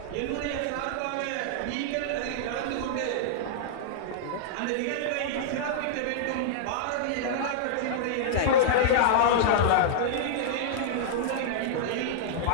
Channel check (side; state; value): both; different; correlation -0.02